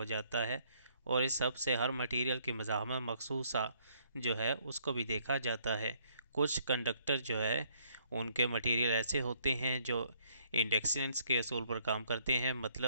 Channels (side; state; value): both; inverted; correlation -0.66